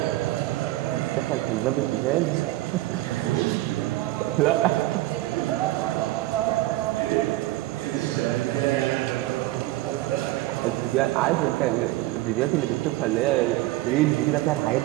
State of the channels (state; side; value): quieter; left; 17.3 dB